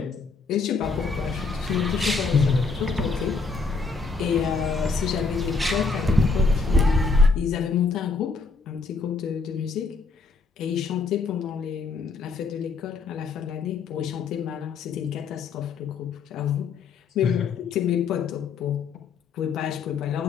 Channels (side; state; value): right; quieter; 4.5 dB